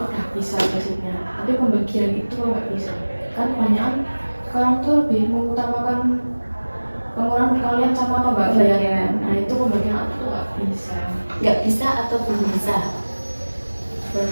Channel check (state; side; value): inverted; both; correlation -1.00